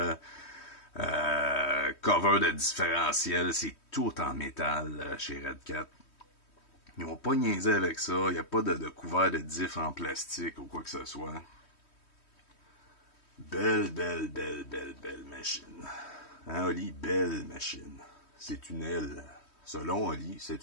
cover de différentiel, c'est tout en métal chez Redcat. Ils n'ont pas niaisé avec ça. Il n'y a pas de couvert de diff en plastique ou quoi que ce soit. Belle machine. Hein, Oli? Belle machine. C'est une L. Selon Oli, c'est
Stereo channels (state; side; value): late; right; 3.1 ms